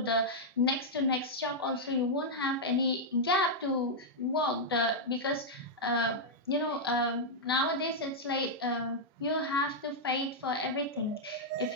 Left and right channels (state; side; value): normal; both; correlation -0.05